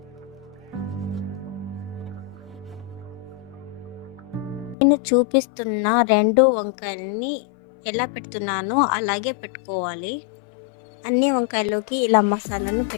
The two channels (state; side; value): drops out; right; at 4.8 s